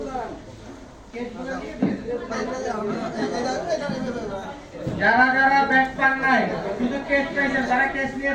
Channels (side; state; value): both; identical; correlation 1.00